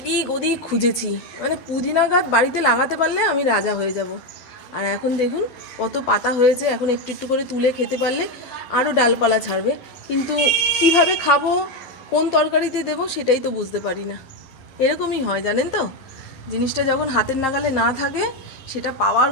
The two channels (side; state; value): right; late; 11 ms